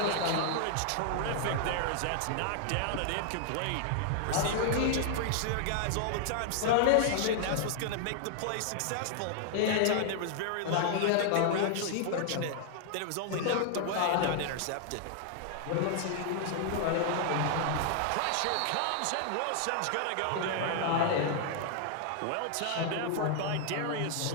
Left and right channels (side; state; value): both; different; correlation 0.00